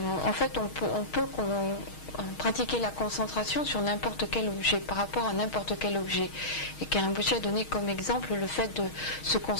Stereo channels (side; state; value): right; late; 6.4 ms